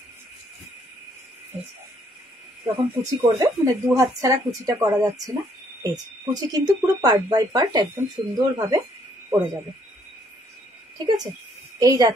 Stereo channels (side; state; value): both; normal; correlation 0.67